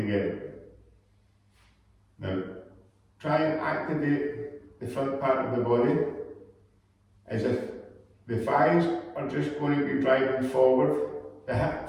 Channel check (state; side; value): identical; both; correlation 1.00